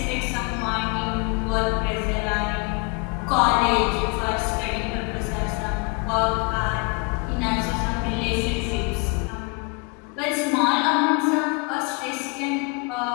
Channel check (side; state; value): right; quieter; 31.5 dB